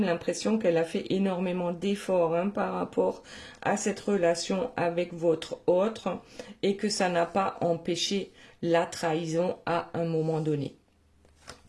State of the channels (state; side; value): identical; both; correlation 1.00